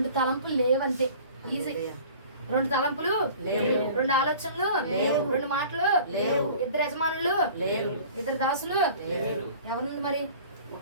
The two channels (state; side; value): inverted; both; correlation -0.45